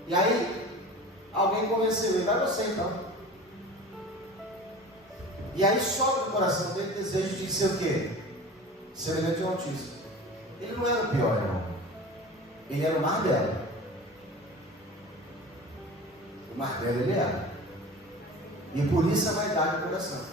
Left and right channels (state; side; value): normal; both; correlation 0.37